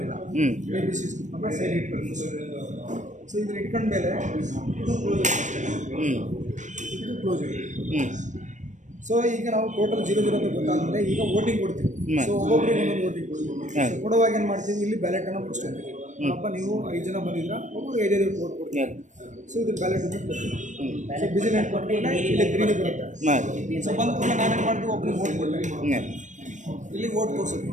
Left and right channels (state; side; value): late; left; 0.35 ms